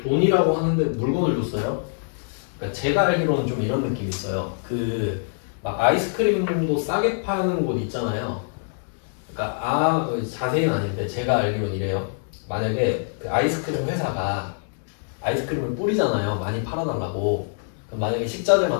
돈이라고 하는데 물건을 줬어요. 그러니까 제가 알기로는 좀 이런 느낌이 있어요. 막 아이스크림도 싸게 파는 곳 있잖아요. 그러니까 자세히는 아닌데 제가 알기로는 이래요. 만약에 그 아이스크림 회사가 아이스크림을 뿌리잖아요. 많이 팔아달라고. 그럼 만약에 식자재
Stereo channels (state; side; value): silent; right; digital silence